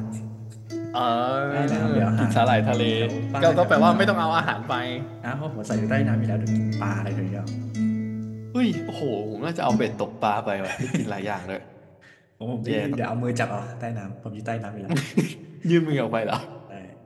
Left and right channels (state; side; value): identical; both; correlation 1.00